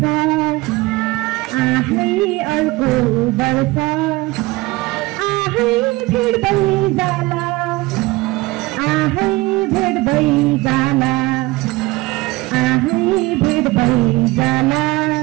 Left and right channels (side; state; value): left; quieter; 21.4 dB